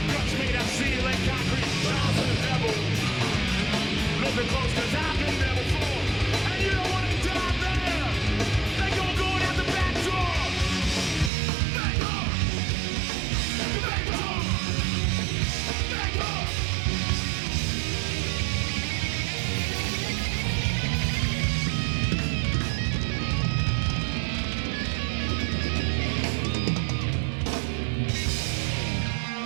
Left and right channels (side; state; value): left; drops out; at 11.3 s